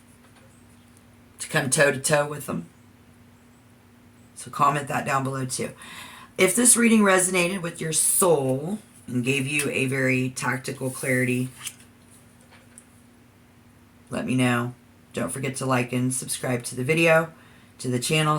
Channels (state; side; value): identical; both; correlation 1.00